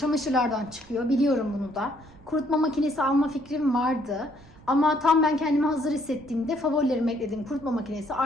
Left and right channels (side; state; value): right; noise; rumble, 24 dB below the sound